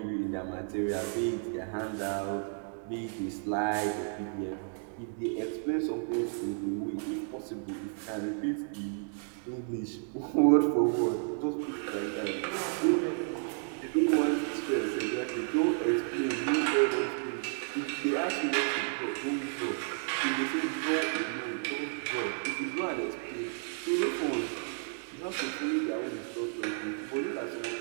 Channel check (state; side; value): silent; left; 56 dB below the other